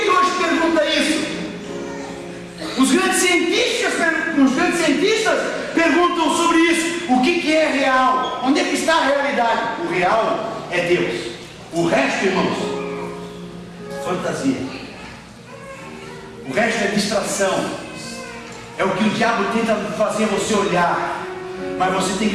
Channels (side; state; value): both; identical; correlation 1.00